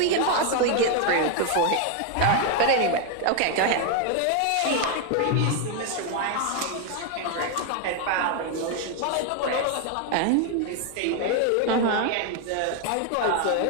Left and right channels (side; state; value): both; different; correlation 0.01